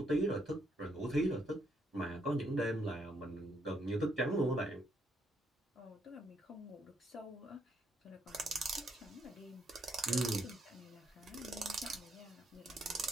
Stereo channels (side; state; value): both; normal; correlation 0.74